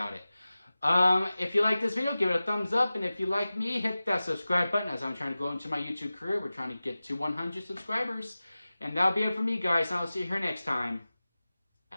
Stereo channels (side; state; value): both; inverted; correlation -0.96